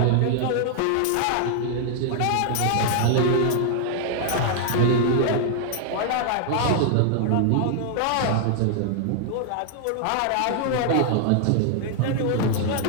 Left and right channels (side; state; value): both; different; correlation 0.00